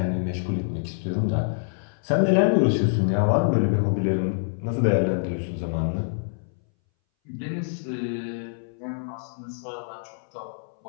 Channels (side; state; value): right; silent; 60 dB below the other